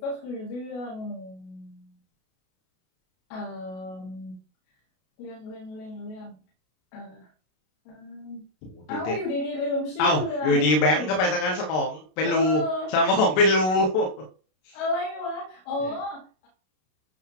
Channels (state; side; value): late; right; 32 ms